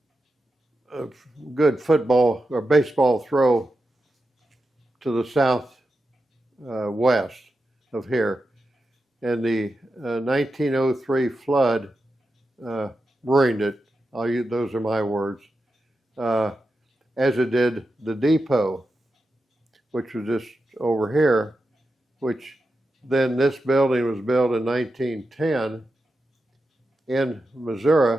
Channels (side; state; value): both; normal; correlation 0.90